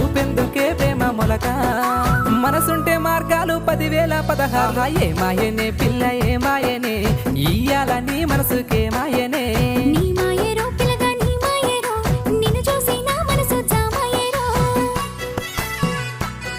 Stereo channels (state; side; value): identical; both; correlation 1.00